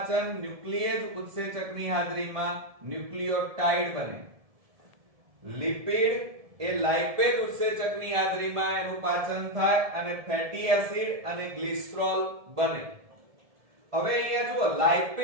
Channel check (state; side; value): late; left; 1.7 ms